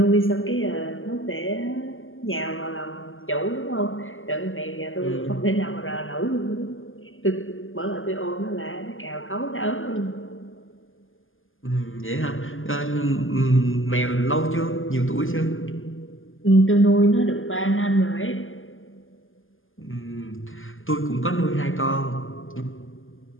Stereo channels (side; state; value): right; late; 0.59 ms